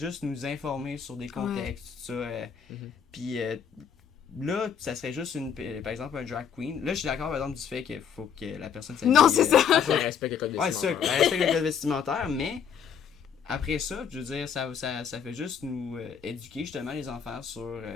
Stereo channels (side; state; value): right; quieter; 7.6 dB